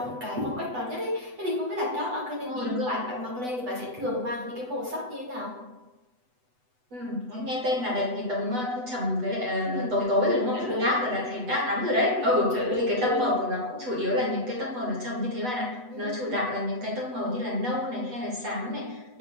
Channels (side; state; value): left; late; 8.0 ms